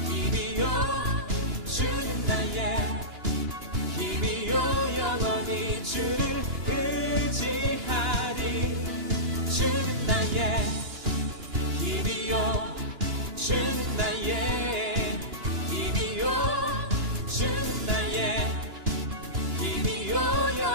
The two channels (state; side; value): late; left; 2.9 ms